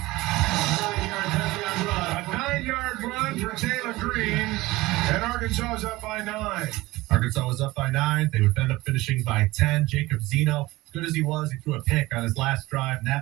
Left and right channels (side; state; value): left; quieter; 19.4 dB